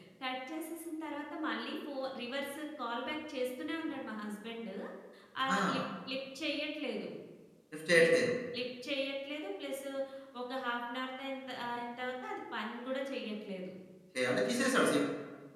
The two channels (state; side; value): identical; both; correlation 1.00